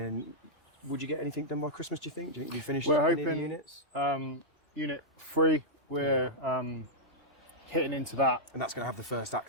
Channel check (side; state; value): both; normal; correlation -0.07